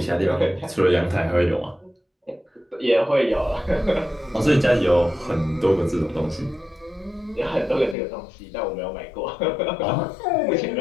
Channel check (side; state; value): right; drops out; at 8.0 s